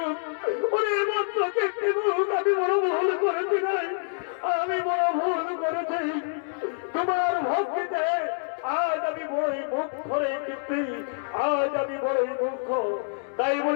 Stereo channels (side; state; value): right; silent; digital silence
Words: ওরে বৎস কীর্তিমুখ, আমি বড় ভুল করেছি নাই, আমি বড় ভুল করেছি। তোমার ভক্তিতে আজ আমি বড়ই মুখ করে কীর্তি, আজ আমি বড়ই মুখ। তাই